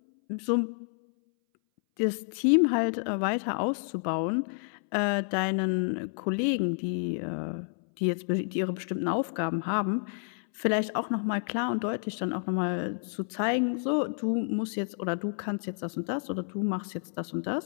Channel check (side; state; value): right; silent; 58 dB below the other